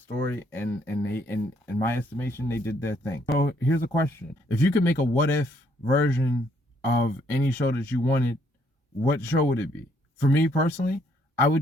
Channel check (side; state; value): both; normal; correlation 0.69